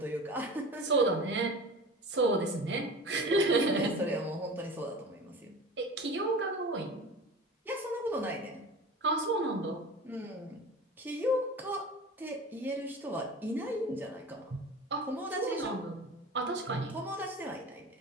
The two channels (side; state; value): both; normal; correlation 0.35